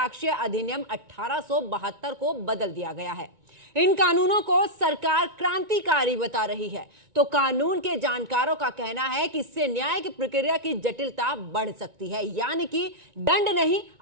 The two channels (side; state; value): left; late; 2.2 ms